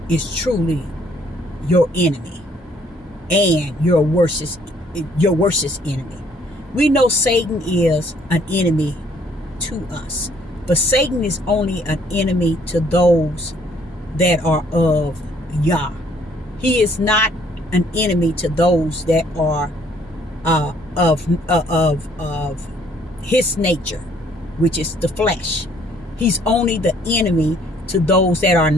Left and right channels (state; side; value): normal; both; correlation 0.63